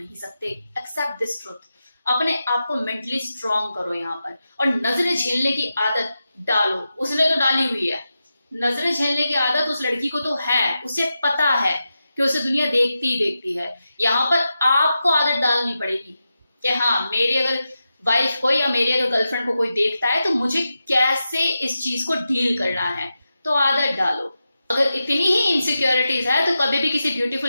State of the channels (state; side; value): inverted; both; correlation -0.90